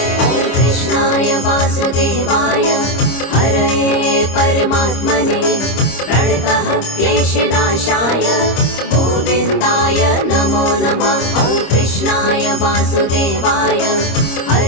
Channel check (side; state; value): right; late; 26 ms